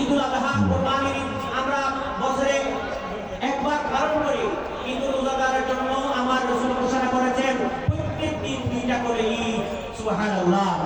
আযহা, কুরবানির ঈদ আমরা বছরে একবার পালন করি। কিন্তু রোজাদারের জন্য আমার রাসূল ঘোষণা করেছেন প্রত্যেক দিন দুইটা করে ঈদ। সুবহানাল্লাহ।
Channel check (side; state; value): both; identical; correlation 1.00